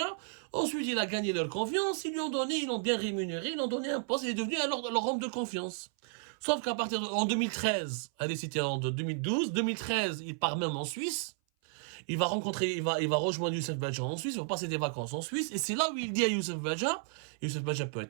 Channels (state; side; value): silent; left; 56 dB below the other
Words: Ensuite il a gagné leur confiance, ils l'ont bien rémunéré, ils l'ont donné un poste, il est devenu leur homme de confiance. Sauf qu'en 2013, allez, c'était en 2012, il part même en Suisse. il va rencontrer, il va rejoindre Youssef Badja en Suisse, il va passer des vacances en Suisse, et c'est là où il dit à Youssef Badja peut être